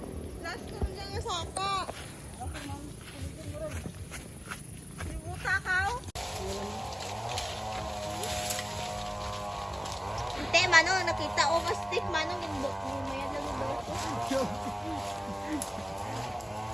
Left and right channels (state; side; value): normal; both; correlation 0.97